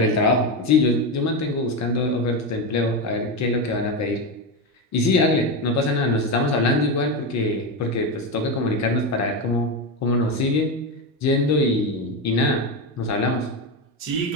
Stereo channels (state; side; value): normal; both; correlation 0.14